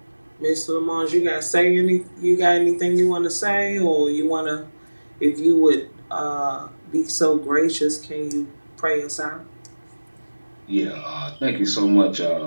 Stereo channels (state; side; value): inverted; both; correlation -1.00